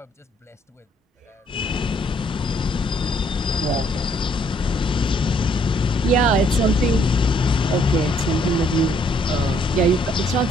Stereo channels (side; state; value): both; normal; correlation 0.67